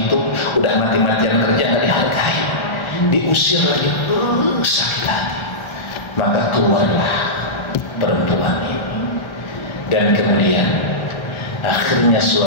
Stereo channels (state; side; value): late; right; 1.3 ms